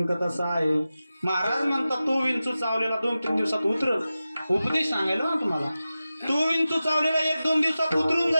तसा आहे. महाराज म्हणतात तो विंचू चावलेला 2-3 दिवसात उतरल. उपदेश सांगायला ना तुम्हाला, तो विंचू चावलेला 1-2 दिवसात उतरून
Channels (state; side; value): inverted; both; correlation -0.94